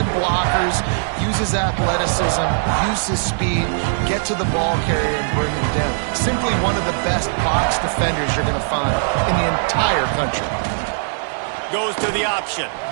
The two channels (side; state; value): left; silent; digital silence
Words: blockers, use his athleticism, use his speed, get to the ball carrier and bring him down. Simply one of the best box defenders you're going to find in the entire country. Goes to the option.